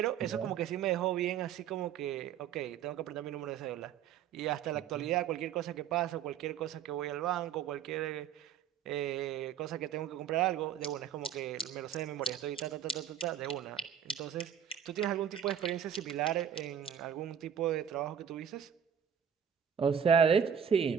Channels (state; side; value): quieter; left; 8.5 dB